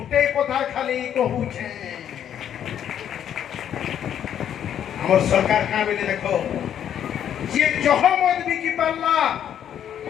उठे कथा खाली कहूचे हमर सरकार का बेले देखो जे जहमत बिकी पारला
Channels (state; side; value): quieter; right; 9.7 dB